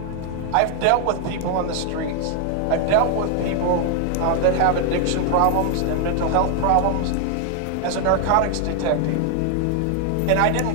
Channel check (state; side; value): different; both; correlation 0.00